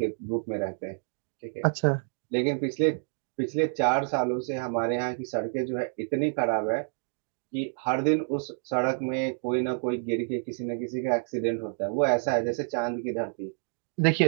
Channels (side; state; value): left; silent; 59 dB below the other